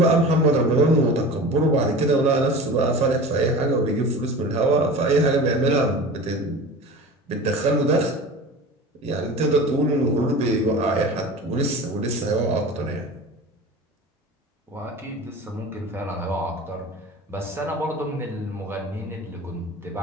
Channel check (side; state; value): both; normal; correlation 0.35